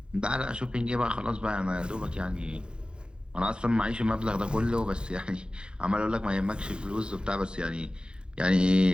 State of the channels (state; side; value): late; left; 0.050 ms